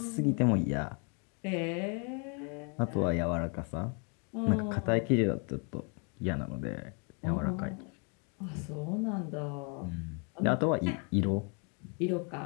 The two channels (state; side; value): quieter; right; 37.1 dB